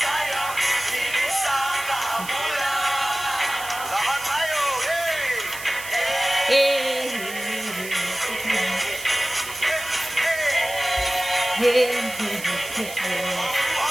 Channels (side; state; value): right; noise; hiss, 12 dB below the sound